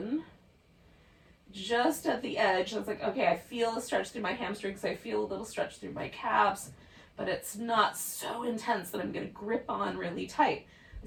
just at the edge. It's like, okay, I feel a stretch through my hamstrings, I feel a little stretch through my calves, but it's not so intense that I'm going to grip on really tight.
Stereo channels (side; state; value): both; identical; correlation 1.00